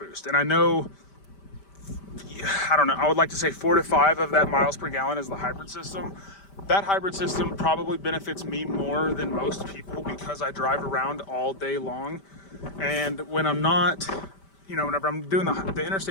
And I know, I don't know, I would like to say 4 to 5 of that miles per gallon is the hybrid system. That hybrid system probably benefits me more than most people because I drive around all day long. And when I'm not, you know, whenever I'm doing the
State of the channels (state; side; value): late; right; 5.1 ms